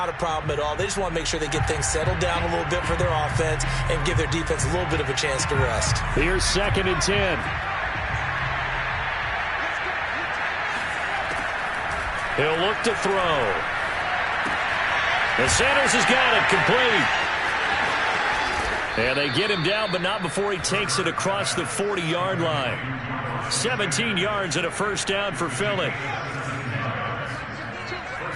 a problem at all. They just want to make sure they get things settled down a little bit for their offense and give their defense a little bit of a chance to rest. Here's 2nd and 10. He'll look to throw. And Sanders has got it complete. And they get him down, but not before he takes it across the 40-yard line. 17 yards and a first down for Philly.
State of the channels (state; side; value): identical; both; correlation 1.00